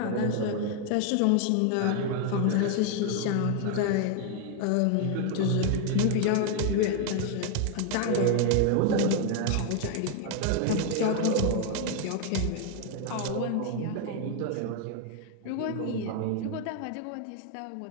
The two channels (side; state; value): both; different; correlation 0.01